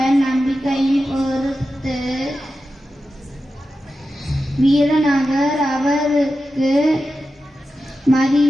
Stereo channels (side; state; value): both; normal; correlation 0.91